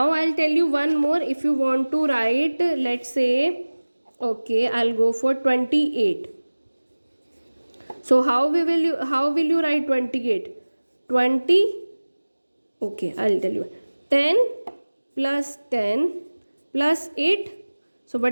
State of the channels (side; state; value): both; inverted; correlation -1.00